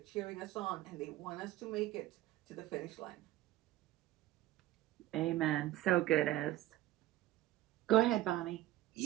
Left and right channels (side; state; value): left; quieter; 14.8 dB